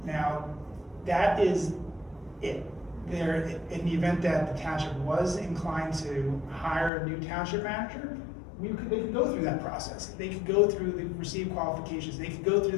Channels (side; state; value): right; drops out; at 6.9 s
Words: Now, that is it. There, in the event that the township was inclined to hire a new township manager, they could go through that process. They could go through the receive qualifications, they could go